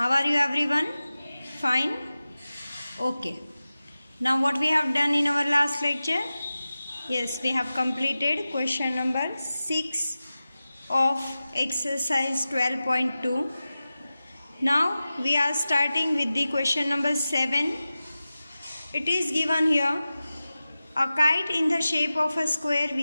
are you everyone? Fine? Okay. Now what we have done in our last lecture? Yes, we have completed question number 6 of exercise 12.2. Now we are starting with the question number 7. It is given here, a kite in the shape of a square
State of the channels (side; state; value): both; inverted; correlation -0.95